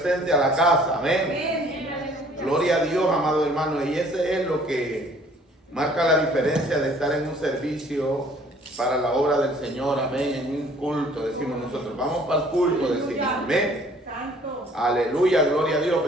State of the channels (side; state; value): both; normal; correlation 0.56